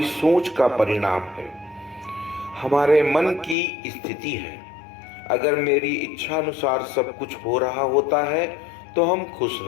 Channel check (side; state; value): right; drops out; at 3.6 s